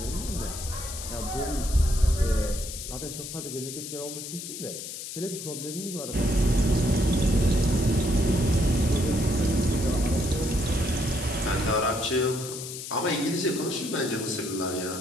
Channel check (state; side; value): noise; left; hiss, 9 dB below the sound